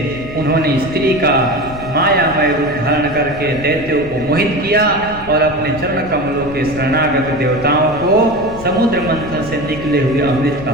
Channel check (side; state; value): left; noise; rumble, 15 dB below the sound